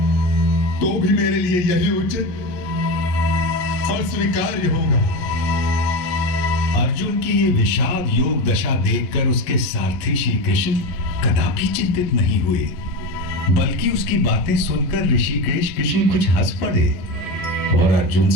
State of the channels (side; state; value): right; late; 11 ms